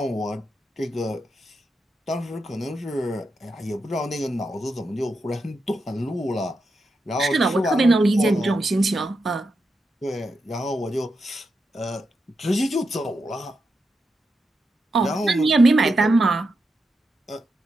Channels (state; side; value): normal; both; correlation 0.86